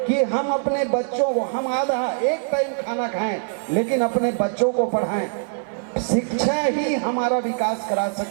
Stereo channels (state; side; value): silent; left; 61 dB below the other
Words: कि हम अपने बच्चों को, हम आधा एक टाइम खाना खाएं लेकिन अपने बच्चों को पढ़ाएं। शिक्षा ही हमारा विकास करा